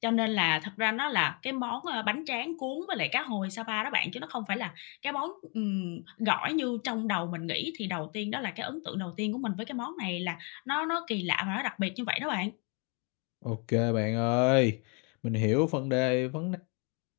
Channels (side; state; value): right; quieter; 34.5 dB